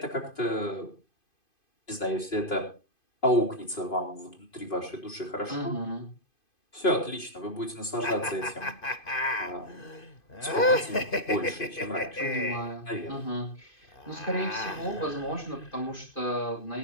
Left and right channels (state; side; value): late; right; 2.5 ms